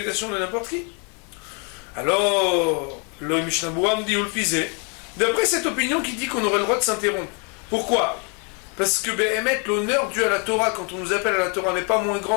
de n'importe qui. Alors le Mishnah Berurah me dit Ulfizé, d'après cette opinion qui dit qu'on aurait le droit de s'interrompre. Pourquoi? Parce que Behemet, l'honneur dû à la Torah quand on nous appelle à la Torah n'est pas moins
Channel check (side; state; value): right; quieter; 35.9 dB